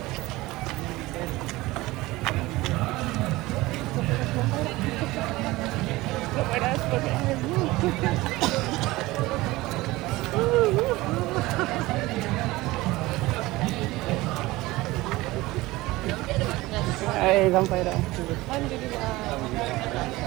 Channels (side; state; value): left; quieter; 19.6 dB